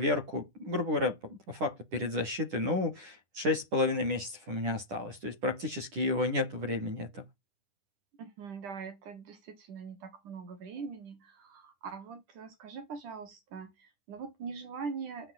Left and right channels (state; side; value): late; left; 10 ms